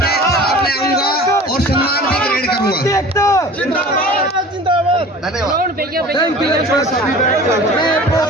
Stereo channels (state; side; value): normal; both; correlation 0.42